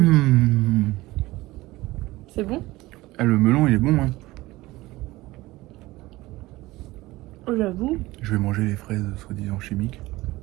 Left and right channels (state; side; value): quieter; left; 19.1 dB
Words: c'est bon? Ah, le melon, il est bon, hein. Oh, j'avoue. Je vais manger les fraises soi-disant chimiques.